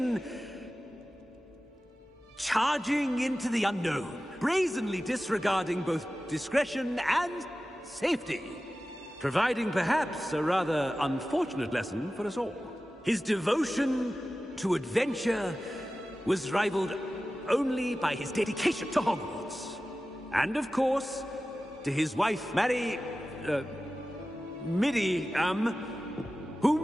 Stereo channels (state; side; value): normal; both; correlation 0.95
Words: charging into the unknown, brazenly disregarding both discretion and safety, providing perhaps a rather unfortunate lesson for us all. His devotion to adventure was rivaled only by his dedication to Hogwarts. And of course, to his wife, Midi,